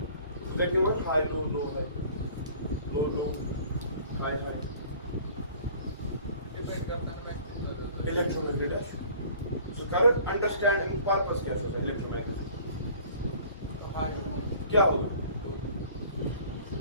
हाई लो है, लो हाई. इलेक्ट्रोमैग्नेट है. So current understanding purpose क्या होता है इलेक्ट्रोमैग्नेट? क्या होगा?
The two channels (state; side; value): inverted; both; correlation -0.49